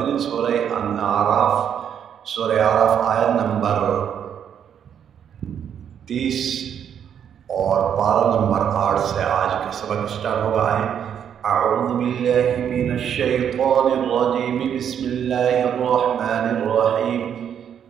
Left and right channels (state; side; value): quieter; left; 8.6 dB